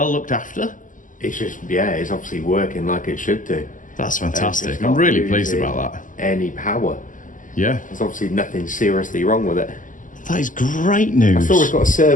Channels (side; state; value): right; late; 0.38 ms